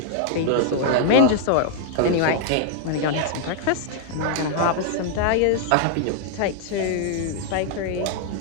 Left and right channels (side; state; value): both; different; correlation -0.01